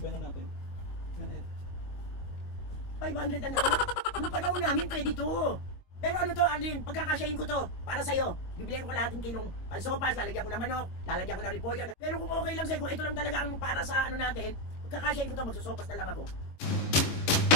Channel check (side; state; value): right; late; 22 ms